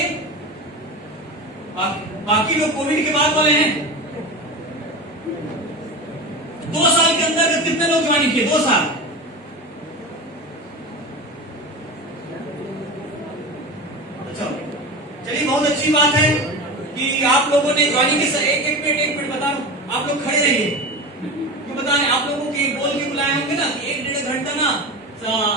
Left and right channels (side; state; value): both; normal; correlation 0.27